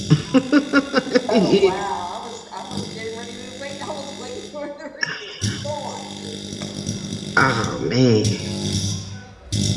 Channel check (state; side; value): identical; both; correlation 1.00